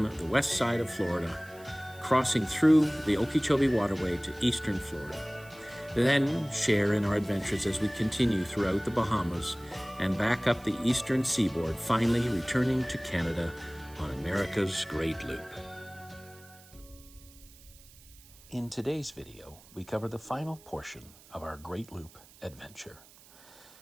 the west side of Florida, crossing through the Okeechobee Waterway to eastern Florida. Then share in our adventures as we continue throughout the Bahamas and back up the eastern seaboard, finally returning to Canada on America's Great Loop. In today's video, we cover the final portion of our Great Loop adventure.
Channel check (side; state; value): right; noise; hiss, 23 dB below the sound